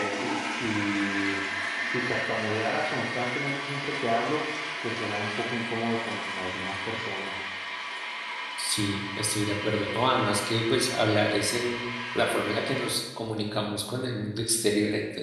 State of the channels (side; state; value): both; identical; correlation 1.00